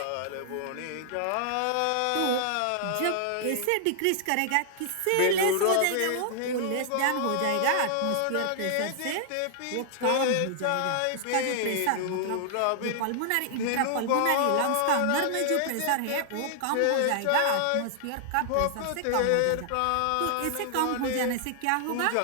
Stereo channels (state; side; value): different; both; correlation 0.00